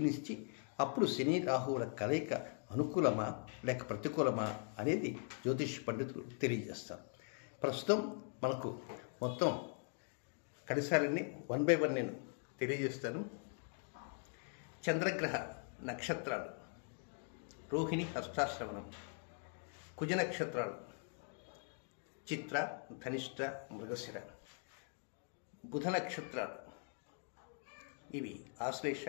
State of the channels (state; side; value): silent; right; 50 dB below the other